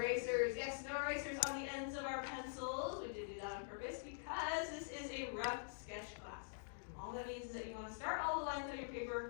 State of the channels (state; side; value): silent; right; digital silence